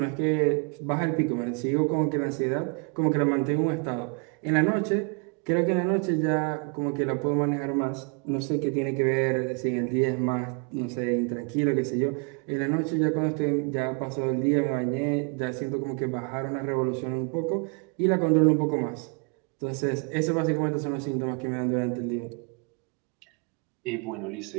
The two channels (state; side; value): quieter; left; 36.8 dB